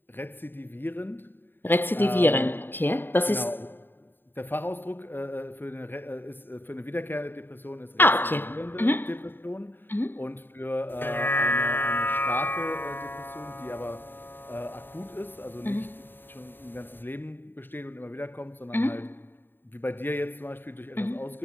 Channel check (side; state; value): right; late; 0.095 ms